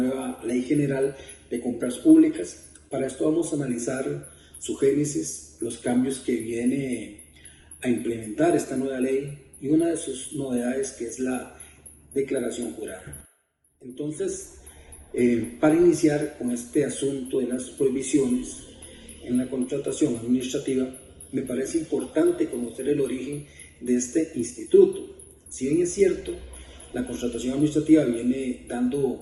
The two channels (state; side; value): identical; both; correlation 1.00